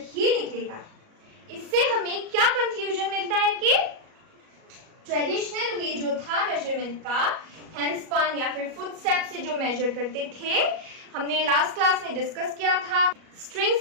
ही निकलेगा। इससे हमें क्या कंक्लूजन मिलता है कि ट्रेडिशनल वे जो था मेजरमेंट का, हैंडस्पन या फिर फुटस्टेप से जो मेजर करते थे, हमने लास्ट क्लास में डिस्कस किया था, स्ट्रिंग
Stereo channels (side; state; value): left; late; 37 ms